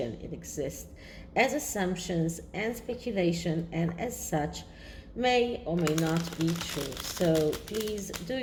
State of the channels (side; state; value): both; identical; correlation 1.00